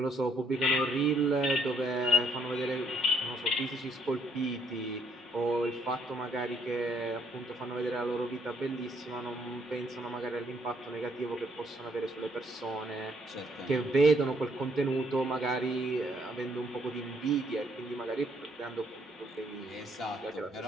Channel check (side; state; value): both; normal; correlation 0.68